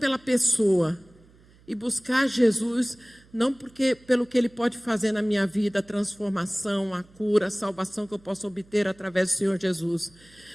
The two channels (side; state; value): right; noise; hum, 28 dB below the sound